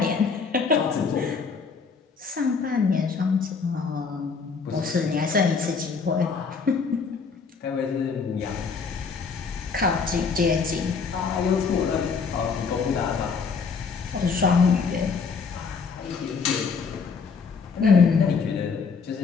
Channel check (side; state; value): right; quieter; 5.3 dB